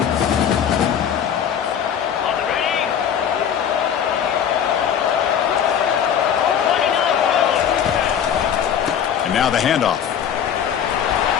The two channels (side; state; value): right; quieter; 8.6 dB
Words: And now the handoff.